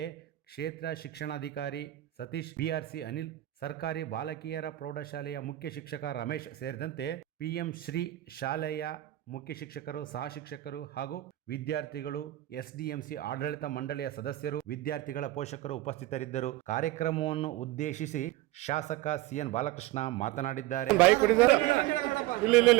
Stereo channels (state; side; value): quieter; left; 16.0 dB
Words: ಕ್ಷೇತ್ರ ಶಿಕ್ಷಣಾಧಿಕಾರಿ ಸತೀಶ್, ಬಿಆರ್ಸಿ ಅನಿಲ್, ಸರ್ಕಾರಿ ಬಾಲಕಿಯರ ಪ್ರೌಢಶಾಲೆಯ ಮುಖ್ಯ ಶಿಕ್ಷಕ ರಮೇಶ್ ಸೇರಿದಂತೆ ಪಿಎಂ ಶ್ರೀ ಶಾಲೆಯ ಮುಖ್ಯ ಶಿಕ್ಷಕರು, ಸಹ ಶಿಕ್ಷಕರು ಹಾಗೂ ವಿದ್ಯಾರ್ಥಿಗಳು, ಎಸ್ಡಿಎಂಸಿ ಆಡಳಿತ ಮಂಡಳಿಯ ಸದಸ್ಯರು, ವಿದ್ಯಾರ್ಥಿಗಳ ಪೋಷಕರು ಉಪಸ್ಥಿತರಿದ್ದರು. ಕಾರ್ಯಕ್ರಮವನ್ನು ಉದ್ದೇಶಿಸಿ ಶಾಸಕ ಸಿಎನ್ ಬಾಲಕೃಷ್ಣ ಮಾತನಾಡಿದ್ದಾರೆ.